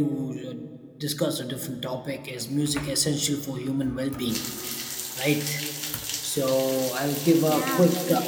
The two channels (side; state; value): both; identical; correlation 1.00